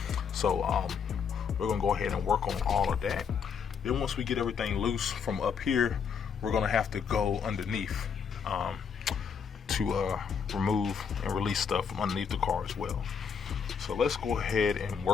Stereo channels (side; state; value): right; quieter; 6.6 dB